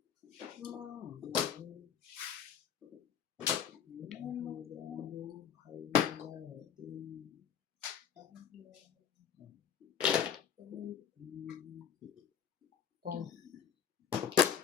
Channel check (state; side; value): quieter; right; 8.3 dB